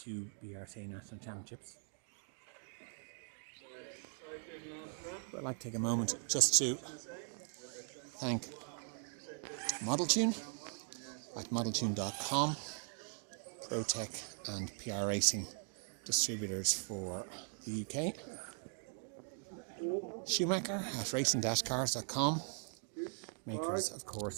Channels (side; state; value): left; silent; 51 dB below the other